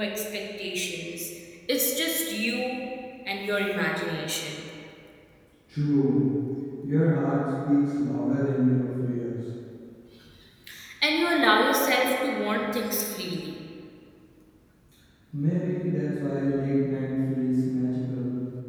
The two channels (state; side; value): identical; both; correlation 1.00